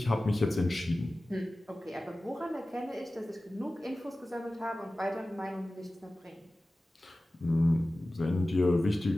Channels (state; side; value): normal; both; correlation 0.96